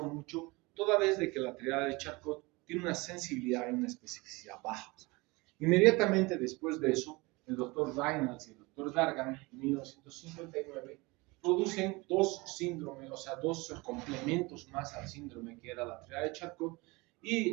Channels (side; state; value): left; quieter; 24.4 dB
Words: mucho, toda vez de que la triada de Charcot tiene una sensibilidad y una especificidad bajas. Inmediatamente después de eso, el doctor Reynolds y el doctor Dargan, en 1959, producen dos síndromes, o sea, dos complementos más al síndrome que era la triada de Charcot,